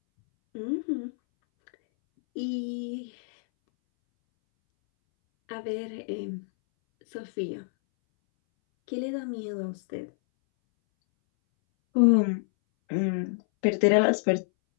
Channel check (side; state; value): right; silent; 60 dB below the other